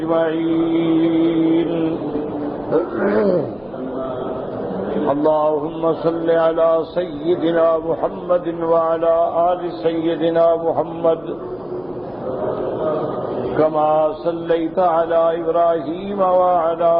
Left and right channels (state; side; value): noise; left; hum, 28 dB below the sound